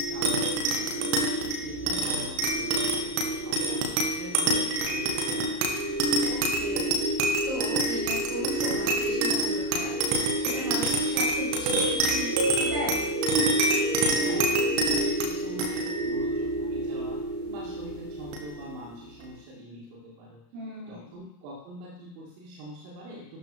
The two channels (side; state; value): left; late; 34 ms